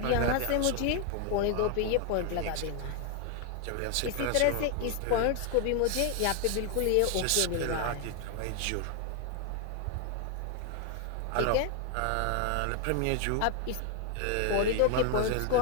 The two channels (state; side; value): different; both; correlation 0.01